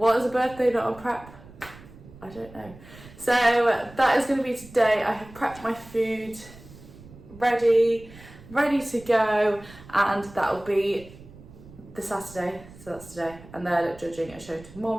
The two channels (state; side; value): noise; right; rumble, 20 dB below the sound